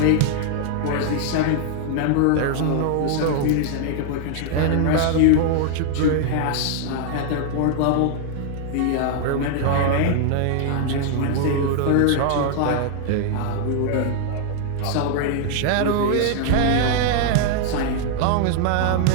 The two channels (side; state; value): both; different; correlation 0.00